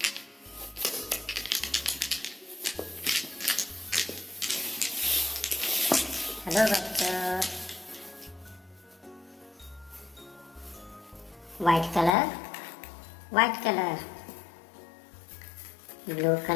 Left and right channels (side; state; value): right; drops out; at 12.2 s